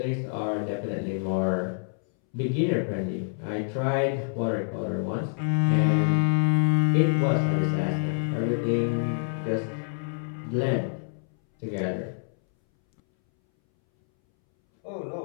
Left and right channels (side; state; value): right; silent; 60 dB below the other